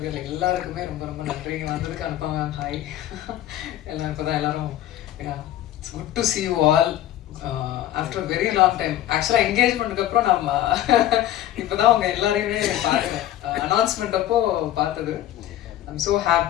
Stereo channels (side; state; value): right; quieter; 13.0 dB